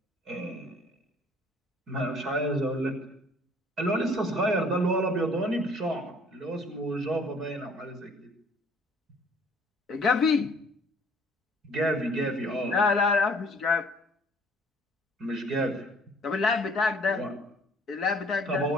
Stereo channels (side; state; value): both; normal; correlation 0.57